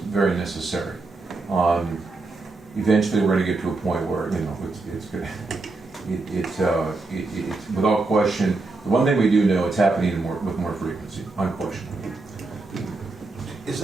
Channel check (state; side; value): quieter; left; 3.4 dB